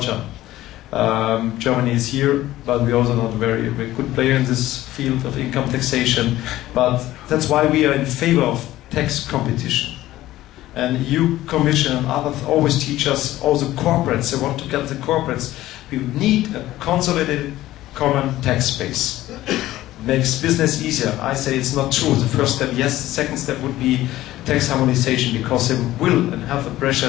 Germany is here, but we're also not a very good player in this field of income taxation. But that's why we are in favor of tax competition. And EU Commission and others always teach us, all the corporates, they want to get the corporates. We need a consolidated common tax base. Makes business easier. I say it's not true. The first step, yes. The second step would be tax harmonization, because they will and have the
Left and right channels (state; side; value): quieter; right; 15.4 dB